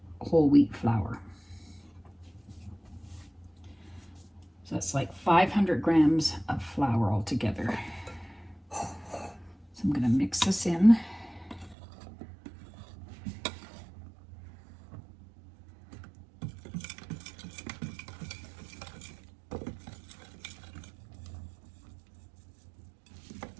whole wheat flour. So that's like 500 grams of flour altogether. So I'm going to mix this in.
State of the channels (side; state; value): left; drops out; at 11.8 s